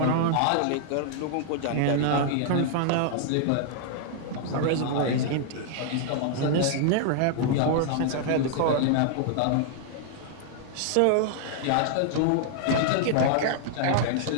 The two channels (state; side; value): different; both; correlation -0.01